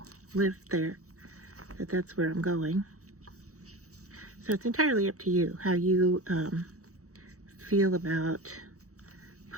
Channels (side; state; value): left; late; 0.65 ms